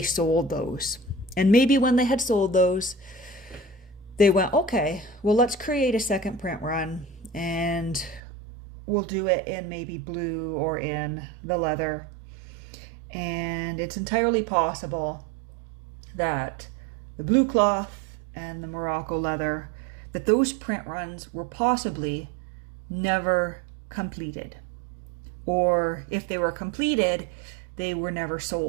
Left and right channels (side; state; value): left; drops out; at 8.2 s